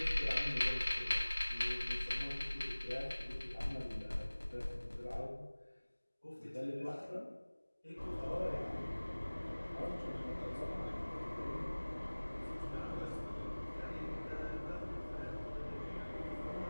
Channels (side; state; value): both; inverted; correlation -1.00